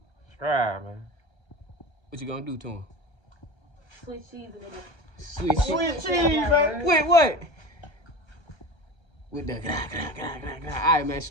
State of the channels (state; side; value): late; right; 1.3 ms